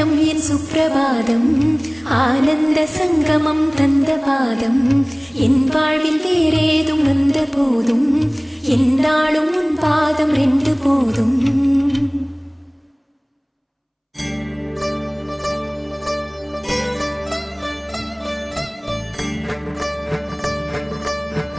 என் சுப்பிரபாதம், ஆனந்த சங்கமம் தந்த பாதம். என் வாழ்வில் வேறேதும் வந்த போதும் என்னாலும் உன் பாதம் ரெண்டு போதும்.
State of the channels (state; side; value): identical; both; correlation 1.00